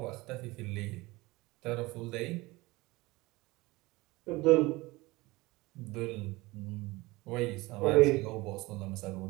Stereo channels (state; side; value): quieter; left; 21.6 dB